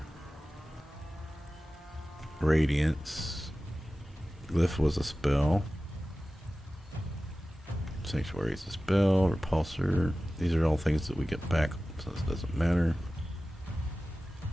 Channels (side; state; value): both; normal; correlation 0.96